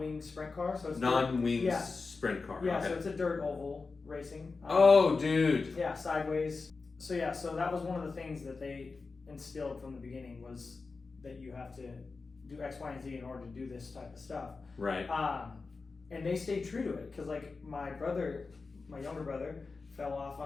sprint car. So it's non-wing sprint car. Yeah, okay. so it's a dirt oval racing. Oh, dude. Yeah, sideways. So that was one of the things that they instilled from the beginning was that you have to do X, Y, and Z in order to do this type of stuff. Right. And they stayed true to it because like my younger brother fell off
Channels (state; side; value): quieter; right; 4.2 dB